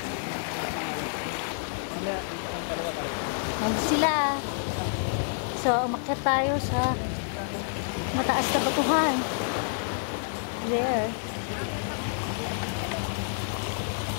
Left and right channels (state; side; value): silent; right; 59 dB below the other